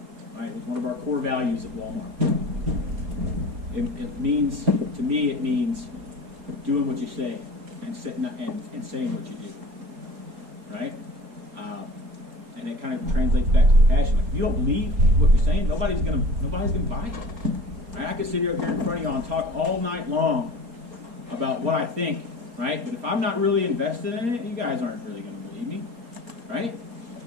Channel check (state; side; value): late; left; 4.2 ms